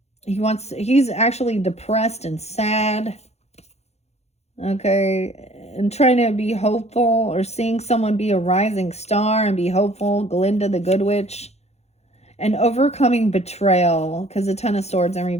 He's actually depressed and sad. Okay, and trying to be hopeful, or seeing someone be a rising star and be hopeful. Glinda the Good Witch. And overcoming betrayal, because the 10 of Swords in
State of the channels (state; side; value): late; right; 0.31 ms